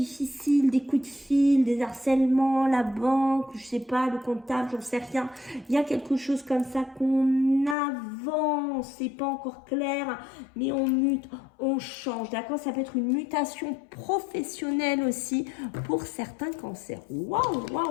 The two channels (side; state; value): right; drops out; at 7.8 s